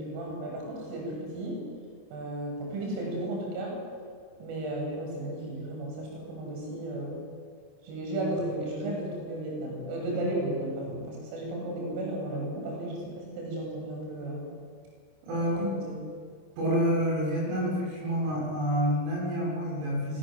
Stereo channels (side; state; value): left; late; 26 ms